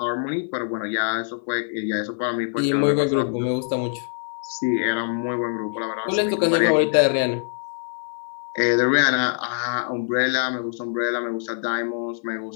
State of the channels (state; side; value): silent; right; 55 dB below the other